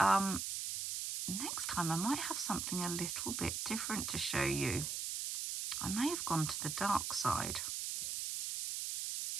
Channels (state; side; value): noise; right; hiss, 2 dB below the sound